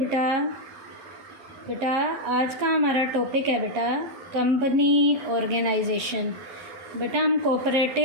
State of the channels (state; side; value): late; left; 11 ms